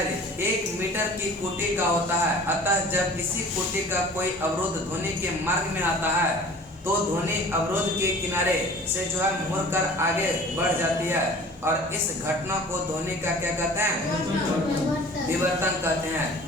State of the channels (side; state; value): both; normal; correlation 0.44